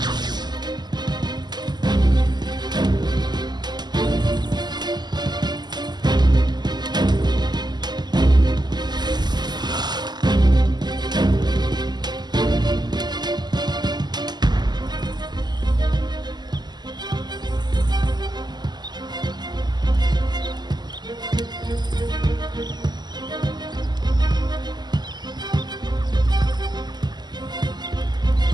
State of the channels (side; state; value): left; late; 0.21 ms